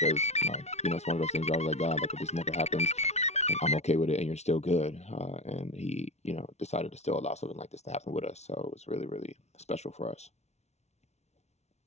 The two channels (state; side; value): late; right; 0.32 ms